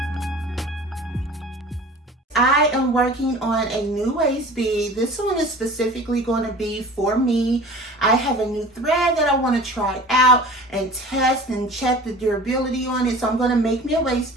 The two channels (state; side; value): normal; both; correlation 0.41